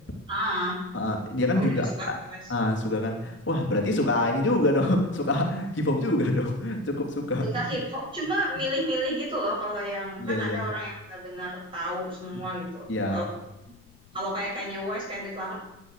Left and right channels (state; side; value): noise; left; rumble, 27 dB below the sound